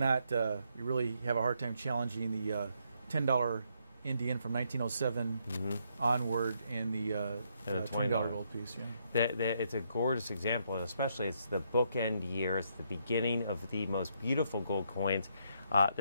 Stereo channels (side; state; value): both; inverted; correlation -0.75